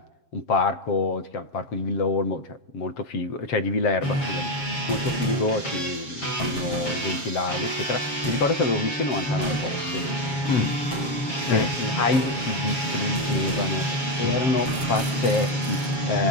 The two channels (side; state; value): right; late; 7.2 ms